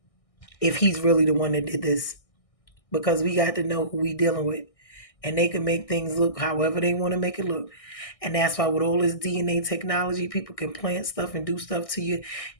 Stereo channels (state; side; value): late; right; 1.6 ms